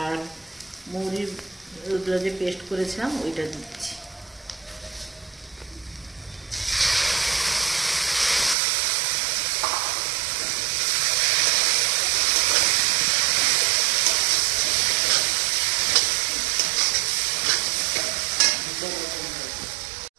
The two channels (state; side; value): drops out; left; at 8.6 s